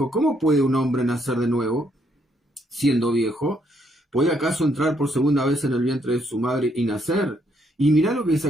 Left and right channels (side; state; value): both; normal; correlation 0.73